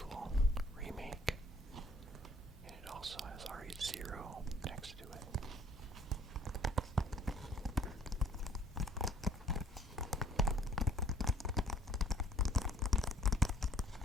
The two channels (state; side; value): normal; both; correlation 0.55